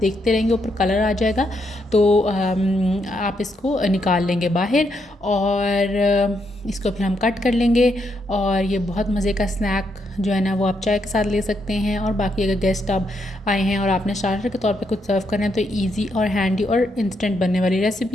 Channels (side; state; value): both; normal; correlation 0.78